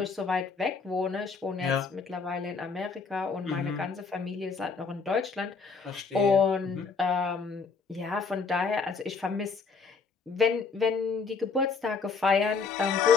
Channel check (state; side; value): quieter; right; 5.0 dB